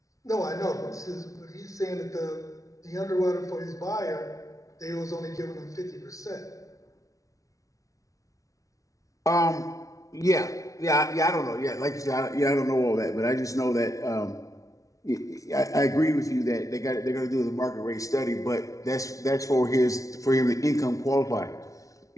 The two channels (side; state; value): right; late; 0.17 ms